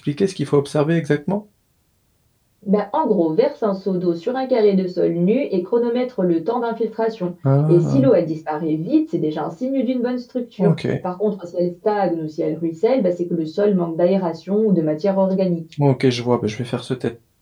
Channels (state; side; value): identical; both; correlation 1.00